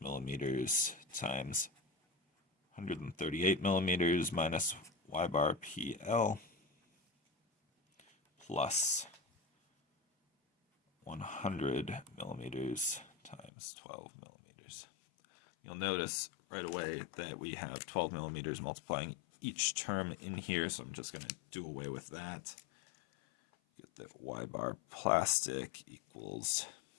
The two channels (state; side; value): drops out; right; at 13.5 s